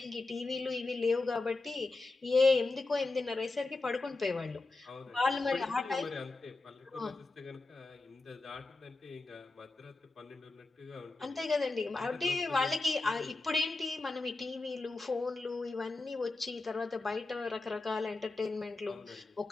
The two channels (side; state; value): right; quieter; 3.4 dB